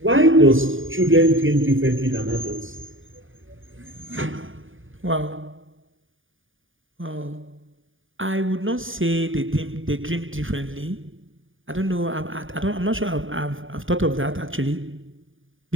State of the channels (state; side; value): late; left; 0.58 ms